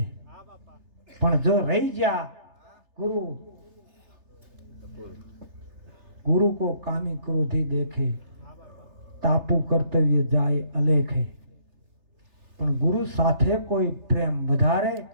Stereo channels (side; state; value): left; late; 3.3 ms